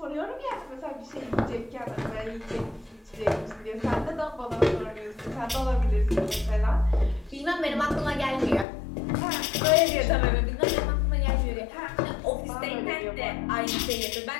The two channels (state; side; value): drops out; right; at 8.7 s